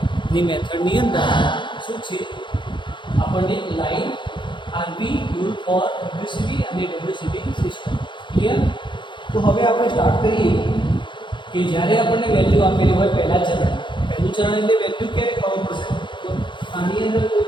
મેથડની અંદર શું છે, આપણને line RB rule for WCB અને WCB સિસ્ટમ ક્લિયર. તો હવે આપણે સ્ટાર્ટ કરીએ કે જ્યારે આપણને વેલ્યુ આપેલી હોય પહેલું ચરણ એટલે વેલ્યુ ક્યારે ખબર પડશે. તો આની અંદર કોઈ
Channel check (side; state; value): right; late; 0.23 ms